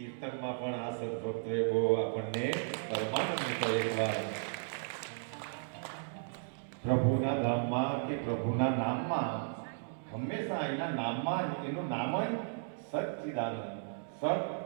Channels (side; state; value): left; silent; digital silence